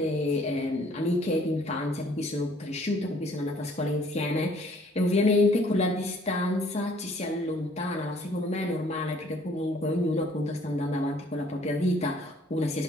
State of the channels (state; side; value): normal; both; correlation 0.59